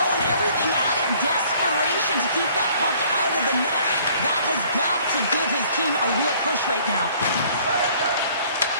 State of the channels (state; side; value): inverted; both; correlation -0.57